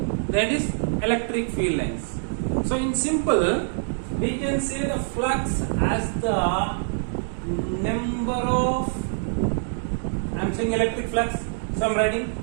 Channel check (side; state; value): left; silent; digital silence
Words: that is electric field lines. So in simple, we can say the flux as the number of, I am saying electric flux, so I am writing